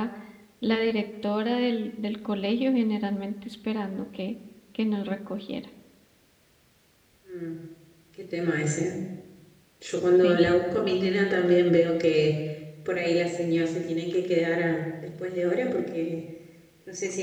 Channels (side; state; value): both; identical; correlation 1.00